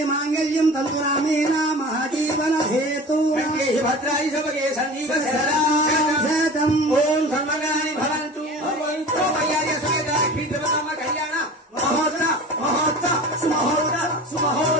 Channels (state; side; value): normal; both; correlation 0.37